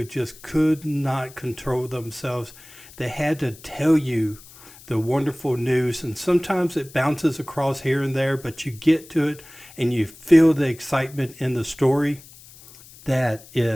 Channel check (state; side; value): noise; left; hiss, 21 dB below the sound